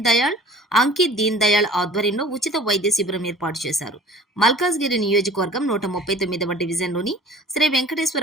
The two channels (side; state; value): both; normal; correlation 0.47